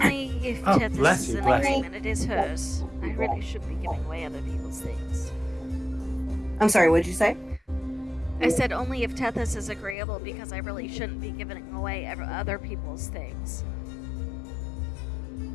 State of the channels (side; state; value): right; drops out; at 10.0 s